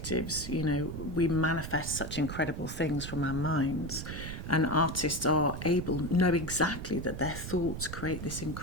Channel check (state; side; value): noise; right; rumble, 7 dB below the sound